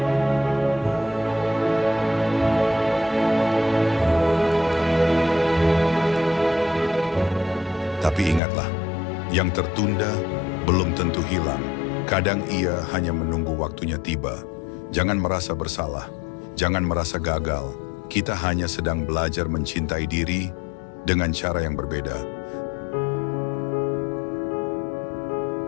Tapi ingatlah, yang tertunda belum tentu hilang. Kadang ia hanya menunggu waktunya tiba. Jangan merasa bersalah, jangan merasa gagal. Kita hanya sedang belajar mencintai diri dengan cara yang berbeda.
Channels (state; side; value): drops out; right; at 8.4 s